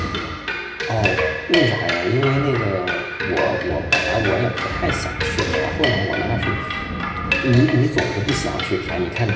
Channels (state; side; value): identical; both; correlation 1.00